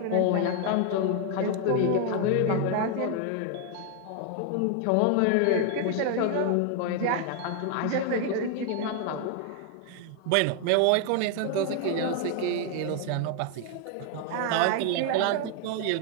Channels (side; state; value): both; different; correlation 0.00